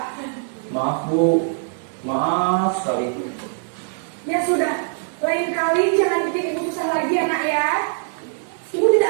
Maaf sekali. Ya sudah, lain kali jangan bikin ibu susah lagi ya nak ya. Ibu tidak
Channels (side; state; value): left; silent; digital silence